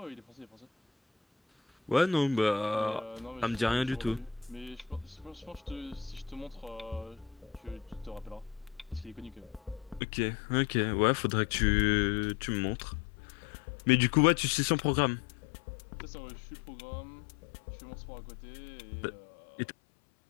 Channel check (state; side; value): drops out; right; at 10.0 s